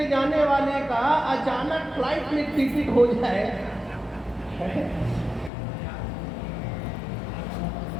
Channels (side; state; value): right; drops out; at 5.5 s